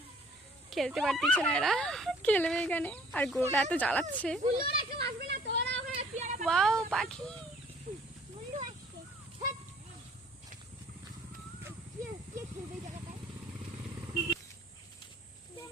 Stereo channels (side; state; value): both; normal; correlation 0.55